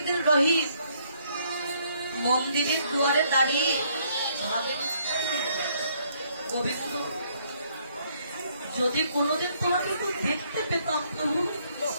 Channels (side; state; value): both; inverted; correlation -0.68